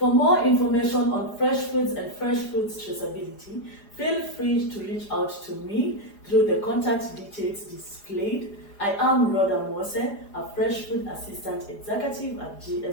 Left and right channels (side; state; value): right; late; 4.9 ms